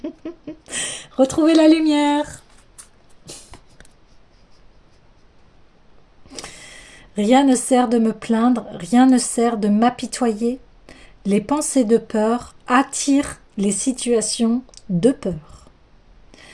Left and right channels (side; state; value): both; identical; correlation 1.00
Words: retrouvez la lumière. Rien ne sert de me plaindre, rien ne sert de m'apitoyer. Les pensées de peur attirent les situations de peur.